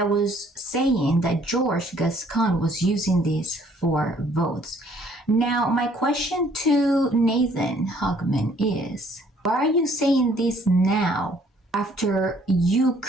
was saying that George Gascon was using this for votes. Now, my question to Nathan Hochman is, why are you saying this now after you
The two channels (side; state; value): both; normal; correlation 0.61